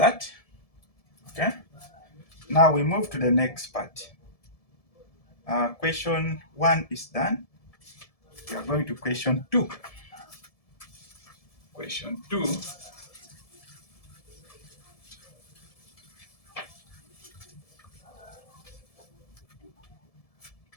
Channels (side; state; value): right; late; 1.7 ms